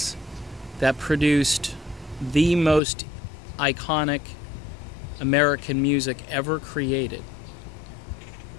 that produced the most iconic American music ever created.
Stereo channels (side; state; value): right; drops out; at 2.8 s